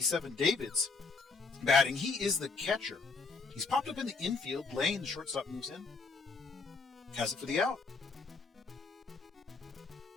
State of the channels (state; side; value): quieter; right; 4.4 dB